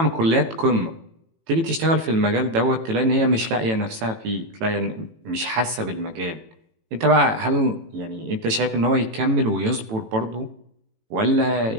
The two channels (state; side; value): late; left; 18 ms